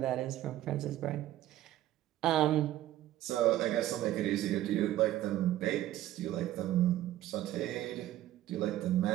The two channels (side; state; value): left; quieter; 13.8 dB